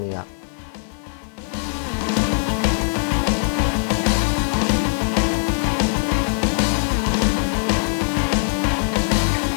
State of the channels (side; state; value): right; silent; digital silence